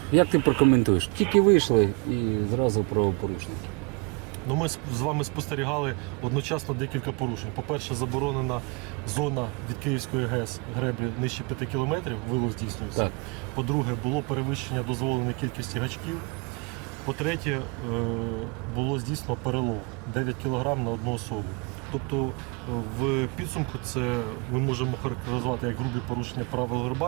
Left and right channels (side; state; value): left; quieter; 30.8 dB